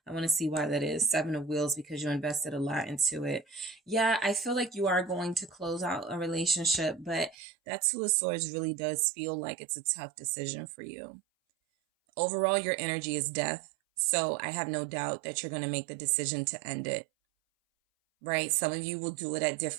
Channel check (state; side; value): drops out; left; at 7.4 s